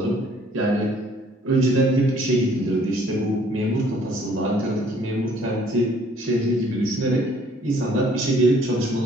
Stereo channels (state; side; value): normal; both; correlation 0.60